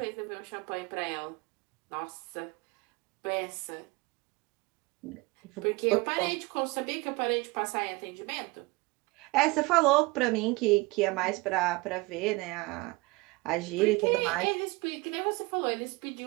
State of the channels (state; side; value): quieter; left; 24.4 dB